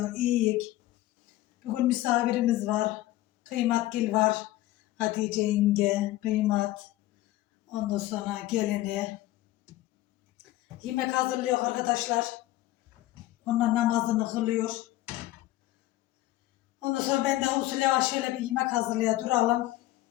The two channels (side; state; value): right; quieter; 16.2 dB